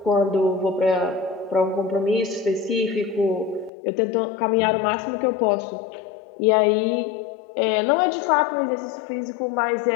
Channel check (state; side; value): drops out; right; at 3.7 s